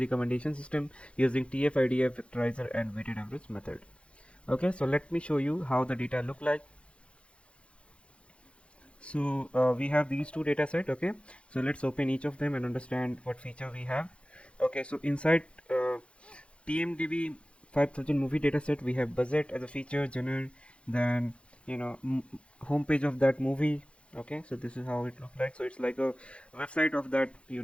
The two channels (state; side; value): late; right; 0.059 ms